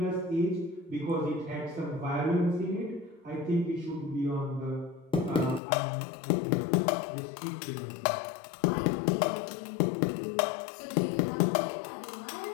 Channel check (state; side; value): drops out; right; at 5.6 s